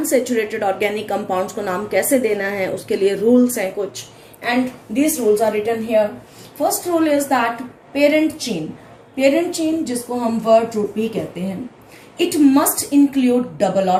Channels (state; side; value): identical; both; correlation 1.00